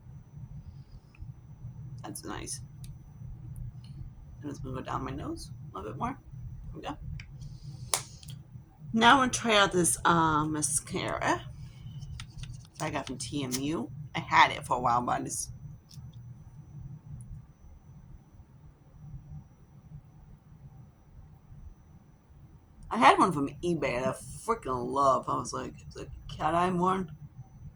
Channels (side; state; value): both; identical; correlation 1.00